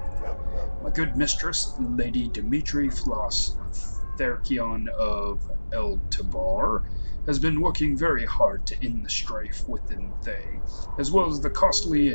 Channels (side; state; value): both; inverted; correlation -1.00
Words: My good mistress, Lady Dimitri Floss Therkion of El-Tabar, has been working very hard to end the strife within Thay, as well as the costly